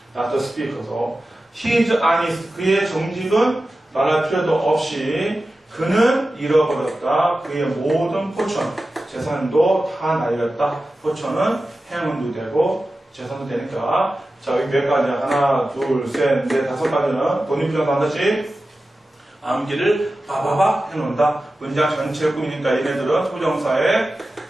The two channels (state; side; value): normal; both; correlation 0.94